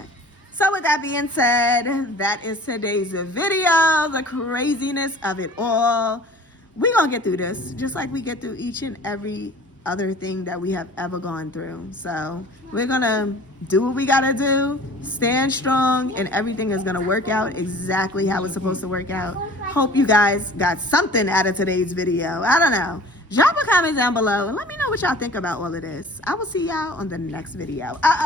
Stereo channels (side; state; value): both; normal; correlation 0.46